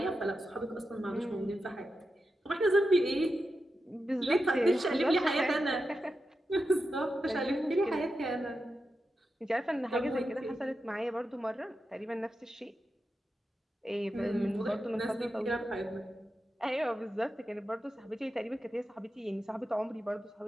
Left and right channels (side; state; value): both; normal; correlation 0.89